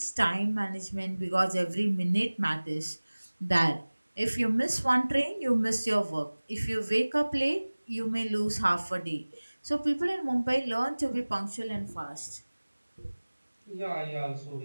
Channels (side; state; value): both; inverted; correlation -1.00